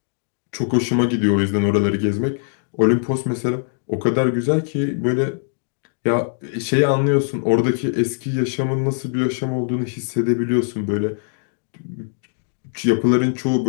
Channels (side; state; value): right; silent; digital silence